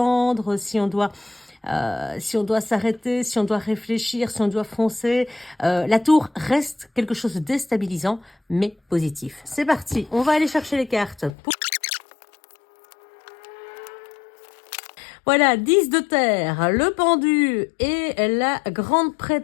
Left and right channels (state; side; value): drops out; right; at 11.3 s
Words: si on doit s'arrêter, si on doit réfléchir, si on doit foncer. La tour reste quelque chose de déstabilisant, mais positif. C'est parti, on va aller chercher les cartes. Voilà, 10 de terre, le pendu et la grande